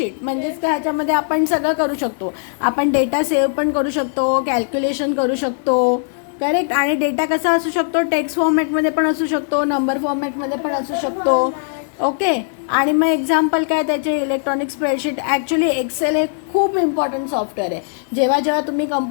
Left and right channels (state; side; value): silent; right; digital silence